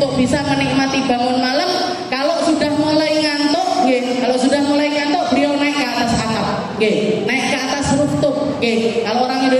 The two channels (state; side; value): identical; both; correlation 1.00